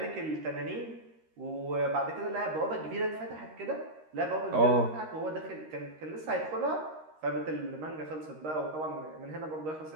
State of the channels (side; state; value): left; late; 13 ms